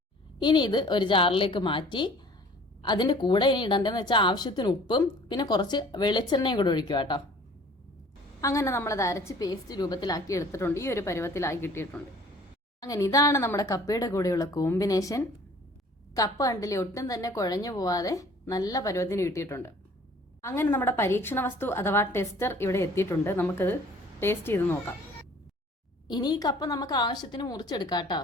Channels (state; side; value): normal; both; correlation 0.51